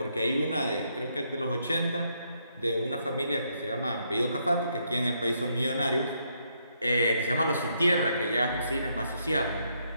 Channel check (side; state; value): both; inverted; correlation -0.76